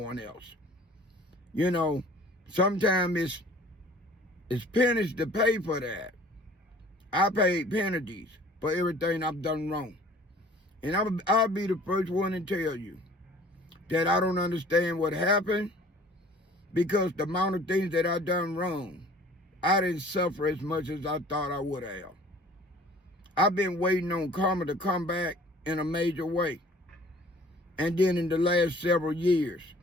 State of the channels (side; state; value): both; normal; correlation 0.51